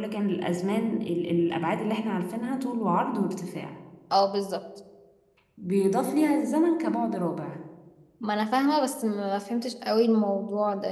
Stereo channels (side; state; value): both; identical; correlation 1.00